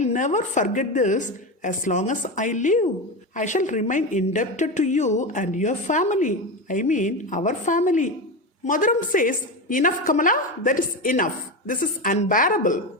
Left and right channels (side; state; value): both; normal; correlation 0.18